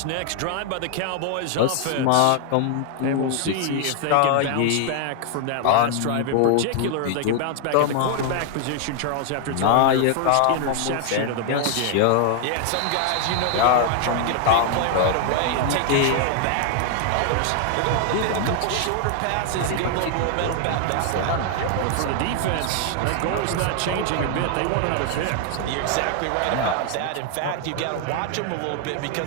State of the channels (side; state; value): both; different; correlation 0.00